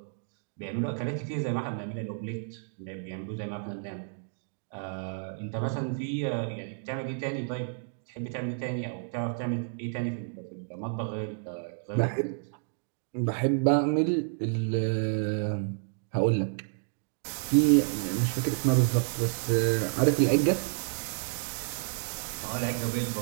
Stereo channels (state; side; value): silent; left; digital silence